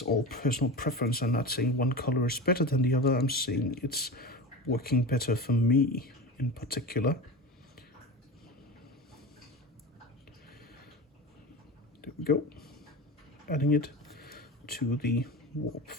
all personal preference. I'm not saying one color is better than the other. I'm saying it's working better for me in particular. There we go. Adding it to the warp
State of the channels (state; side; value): normal; both; correlation 0.28